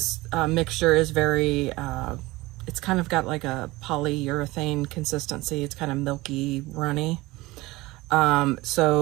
mixture is very... it's kind of got like a polyurethane consistency. It's kind of milky, runny.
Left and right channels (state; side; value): quieter; left; 20.5 dB